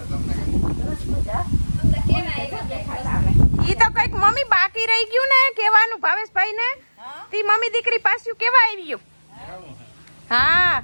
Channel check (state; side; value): inverted; both; correlation -1.00